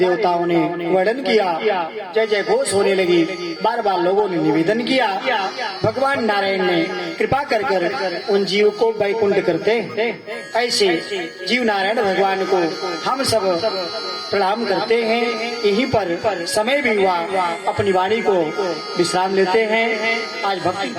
ने वर्णन किया, जय जय घोष होने लगी। बार बार लोगों ने निवेदन किया, भगवान नारायण ने कृपा कर कर उन जीव को वैकुंठ करते। ऐसे जीव नारायण भगवान को हम सब प्रणाम करते हैं। यहीं पर समय भी हुआ, अपनी वाणी को विश्राम लेते हैं। आज भक्ति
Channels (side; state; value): both; identical; correlation 1.00